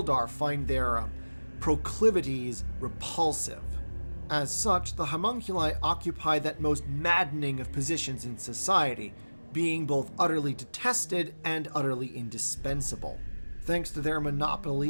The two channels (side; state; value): both; inverted; correlation -1.00